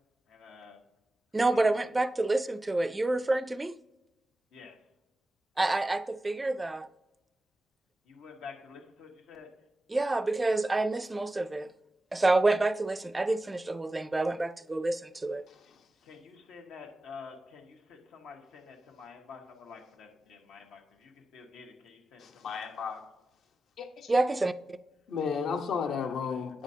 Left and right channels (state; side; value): normal; both; correlation 0.93